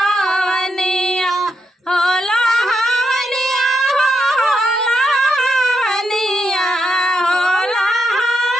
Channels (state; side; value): normal; both; correlation 0.82